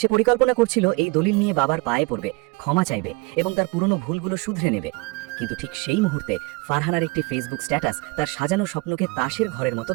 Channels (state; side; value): quieter; left; 26.1 dB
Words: পরিকল্পনা করছিল এই দলিল নিয়ে বাবার পায়ে পড়বে, ক্ষমা চাইবে এবং তার পুরনো ভুলগুলো শুধরে নেবে। কিন্তু ঠিক সেই মুহূর্তে ফারহানার একটি ফেসবুক স্ট্যাটাস তার সাজানো স্বপ্নকে তাসের ঘরের মতো